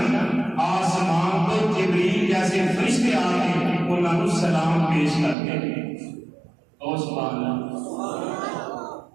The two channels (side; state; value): left; drops out; at 5.4 s